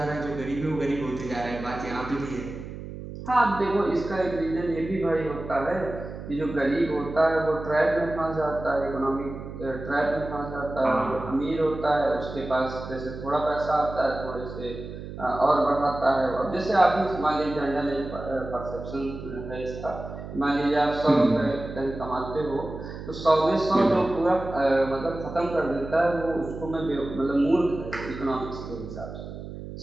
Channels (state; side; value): noise; right; hum, 10 dB below the sound